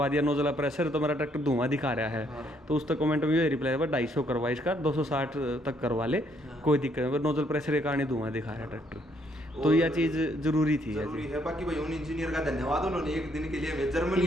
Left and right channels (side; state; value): both; normal; correlation 0.70